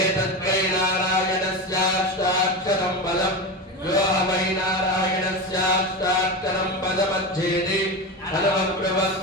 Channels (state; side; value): normal; both; correlation 0.21